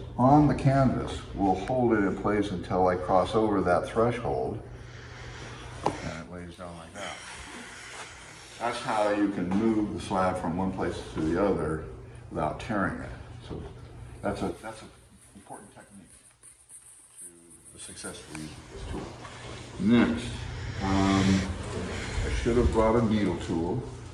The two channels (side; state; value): both; identical; correlation 1.00